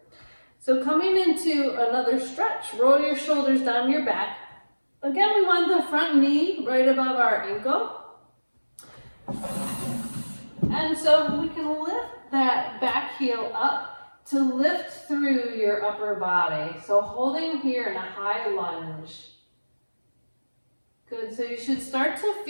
So coming into another stretch, roll your shoulders down your back. Again, we want the front knee right above our ankle. And so we can lift that back heel up to lift through your upper body. So holding here in a high lunge. Good, so you should start to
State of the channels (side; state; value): both; inverted; correlation -1.00